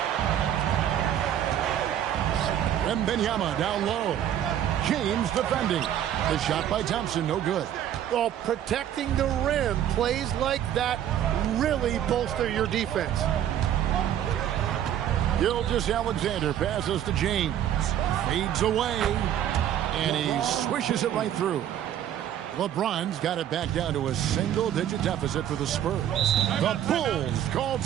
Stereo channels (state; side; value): quieter; left; 10.7 dB